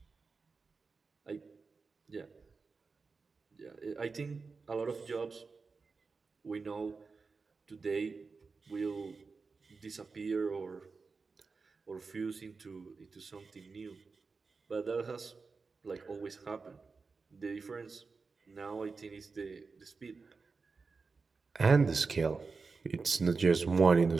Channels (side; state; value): left; quieter; 4.5 dB